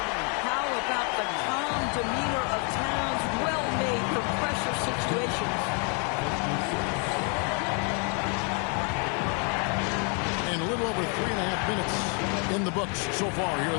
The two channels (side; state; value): right; quieter; 37.3 dB